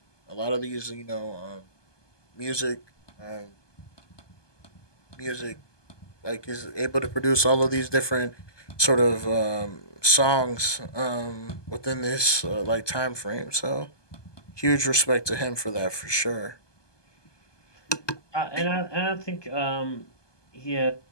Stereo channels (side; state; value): right; late; 1.2 ms